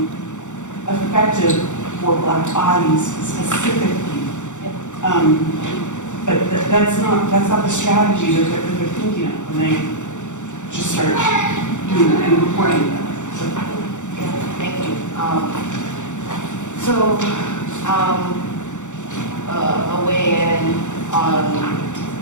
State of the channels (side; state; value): right; late; 0.85 ms